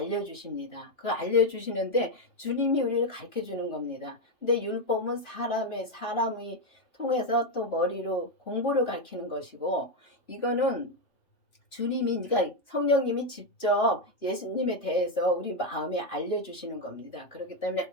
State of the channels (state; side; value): late; right; 2.9 ms